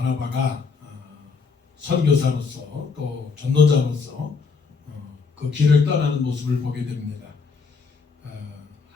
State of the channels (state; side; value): quieter; right; 4.9 dB